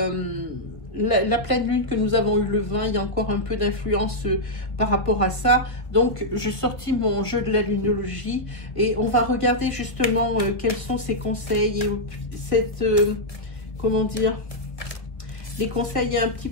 la pleine lune que nous avons eu le 20. Il y a encore un peu d'influence par rapport à ça. Donc, je sortis mon jeu de la lunologie et on va regarder justement quels sont ces conseils et cette, comment dire, les conseils et un petit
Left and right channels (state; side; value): late; right; 1.5 ms